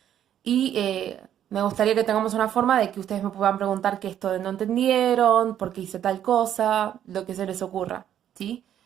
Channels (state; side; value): quieter; left; 10.4 dB